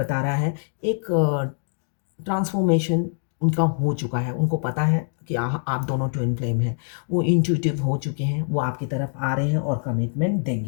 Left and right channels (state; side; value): silent; right; 63 dB below the other